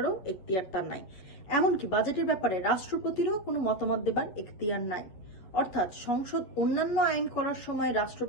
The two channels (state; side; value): late; right; 11 ms